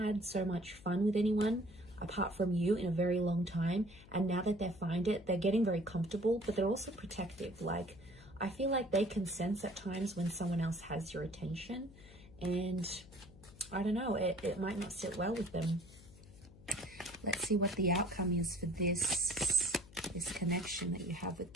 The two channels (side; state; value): left; noise; hum, 21 dB below the sound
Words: so much fun with anyone apart from you in a very long time, and now that they find it, they're getting very comfortable, but they're also protective. Like, I feel like they can sense at times when someone else has your attention, and I don't know, it might not sit well with them. Let's see what the outcome is for this connection that you have with